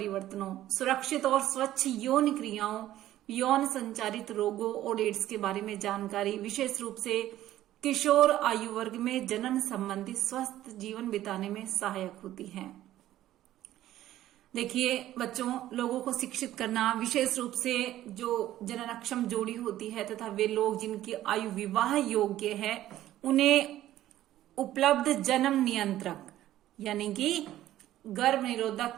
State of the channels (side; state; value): left; quieter; 13.7 dB